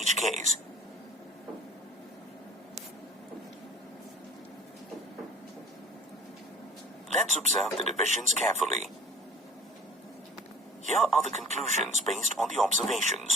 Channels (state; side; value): normal; both; correlation 0.47